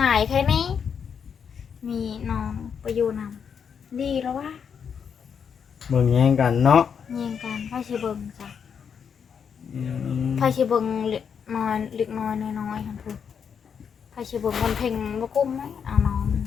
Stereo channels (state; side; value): quieter; right; 7.1 dB